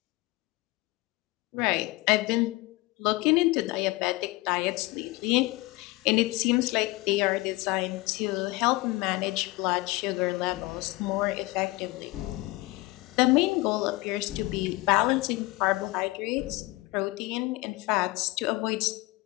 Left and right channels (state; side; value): quieter; right; 21.8 dB